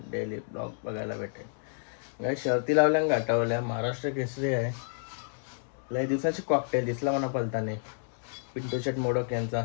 डेली ब्लॉग बघायला भेटेल. गाई शर्ती लावल्या गाठावल्या, महाराष्ट्र केसरी आहे. लय दिवसाची कॉकटेल दिसला म्हणा पलताने, पिंटू शेट मोडक यांचा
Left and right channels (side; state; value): right; silent; digital silence